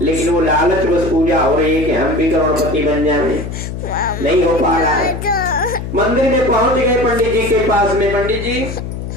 लेकिन वो लालच बस पूजा हो रही है कि हम भी करोड़पति बन जाए, नहीं हो पा रहा है। मंदिर में पहुंच गए पंडित जी के पास में, पंडित जी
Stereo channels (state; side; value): noise; left; hum, 7 dB below the sound